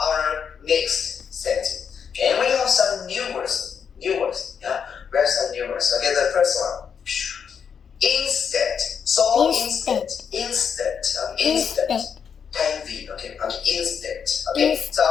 our next sentence. And we have some new words. Yeah. We have some new words. Okay. The first one. Instead. So instead. Can be. Okay. Instead. Okay. So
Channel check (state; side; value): quieter; right; 7.1 dB